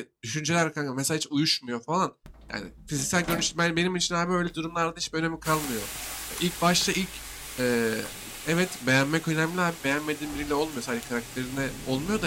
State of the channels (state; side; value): identical; both; correlation 1.00